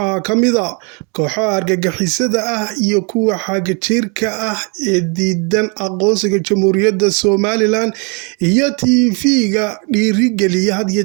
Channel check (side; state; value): left; quieter; 34.4 dB